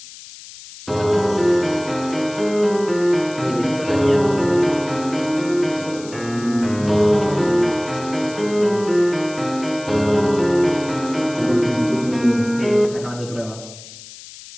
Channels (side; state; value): left; noise; hiss, 17 dB below the sound